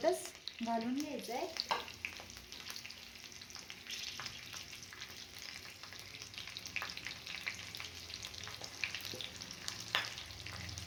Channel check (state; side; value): identical; both; correlation 1.00